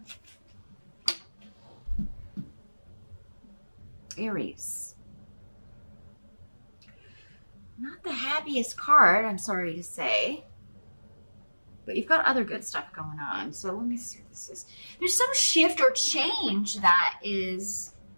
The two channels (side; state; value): both; inverted; correlation -1.00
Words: Aries. Not the happiest card, I'm sorry to say. But you've got other good stuff going on. So let me see what this is. There's some shift or change that is